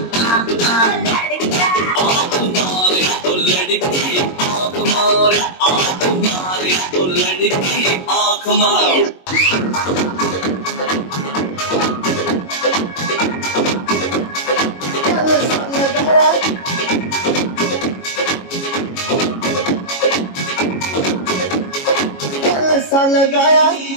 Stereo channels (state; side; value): late; right; 22 ms